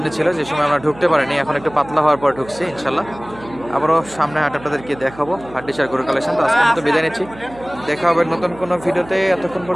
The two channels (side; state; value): right; noise; hum, 19 dB below the sound